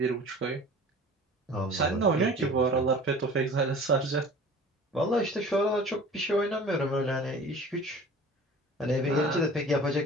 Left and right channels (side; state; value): both; normal; correlation 0.43